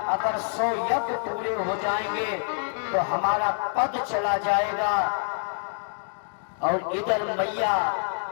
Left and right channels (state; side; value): silent; right; digital silence